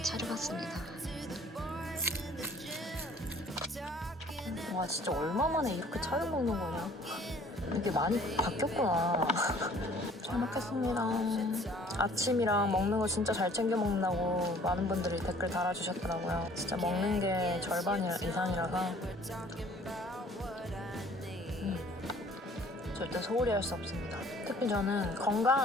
차려봤습니다. 와, 진짜 얼마 만에 이렇게 차려 먹는 거냐. 이게 많이 바뀌었구나. 잘 먹겠습니다. 아침이랑 먹는 거 진짜 잘 챙겨 먹는다고 많은 분들이 댓글 달아주셨더라고요. 진짜 먹는 게 절반 이상이라서 절대 소홀히 할 수 없습니다. 특히 저는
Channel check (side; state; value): both; normal; correlation 0.54